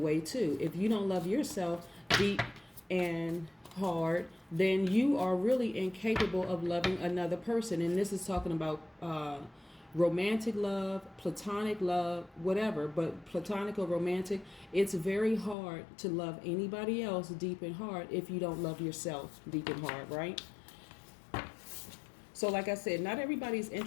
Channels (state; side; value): drops out; right; at 15.6 s